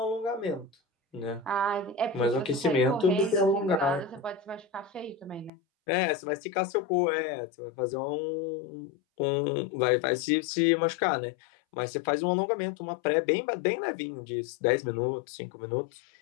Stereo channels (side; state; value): right; drops out; at 5.5 s